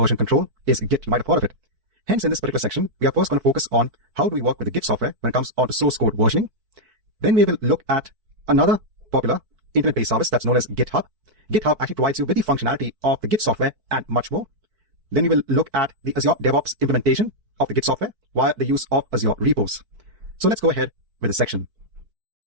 control is Git. You might have heard of it. Hence, in this particular section, we are first going to focus on how do we work with the Git software when it comes on to source code versioning. Then we will look at another popular internet-based service that's known as GitHub. GitHub actually provides you with the functionality of the Git software and much more. Then we will look at the Azure DevOps implementation of the Git software via the use of Azure repos. So let's go ahead with this section.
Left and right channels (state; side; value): late; left; 4.6 ms